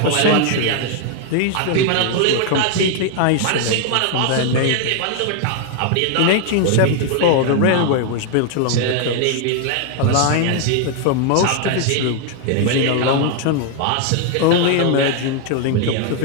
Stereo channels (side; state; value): both; different; correlation 0.00